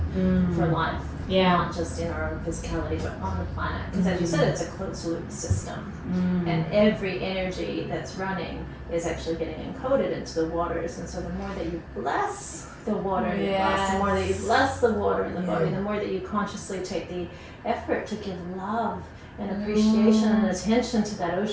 for life. Yeah. Not just in our own physicality, but on the planet. Because as you said, it's a closed loop system. And every energy that's running is actually getting encoded into the waters. And so the more that you bless the water in the glass, the more that you bless the water in the body, the more that you consciously take the effort to give love and appreciation and attention to that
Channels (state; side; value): identical; both; correlation 1.00